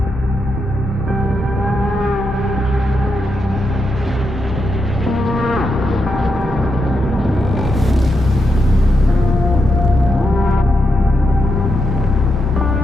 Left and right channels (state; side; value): normal; both; correlation 0.84